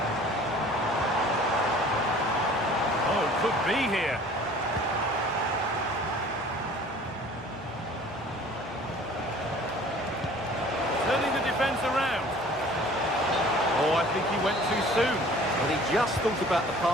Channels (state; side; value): noise; left; hum, 23 dB below the sound